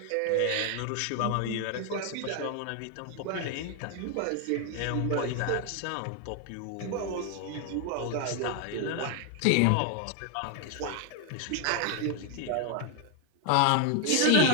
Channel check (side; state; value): both; different; correlation 0.00